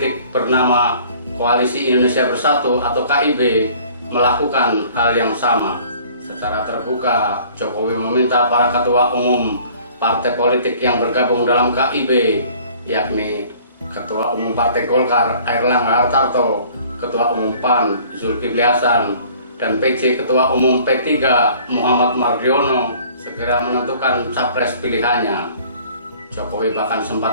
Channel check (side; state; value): both; inverted; correlation -0.52